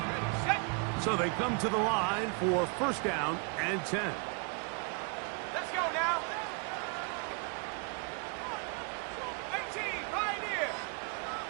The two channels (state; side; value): quieter; left; 37.9 dB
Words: So they come to the line for first down and 10. Let's go now. 18, Pioneer.